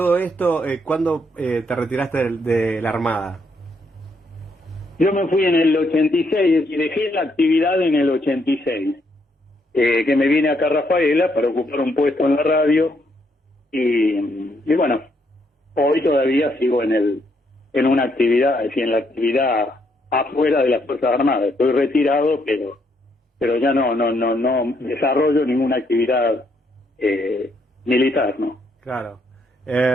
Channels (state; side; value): normal; both; correlation 0.74